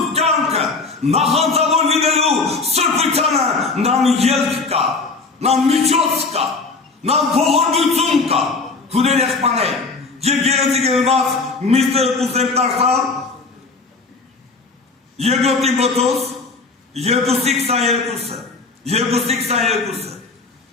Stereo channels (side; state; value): right; quieter; 4.0 dB